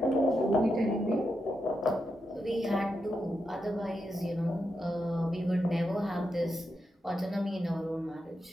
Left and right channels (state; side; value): normal; both; correlation 0.85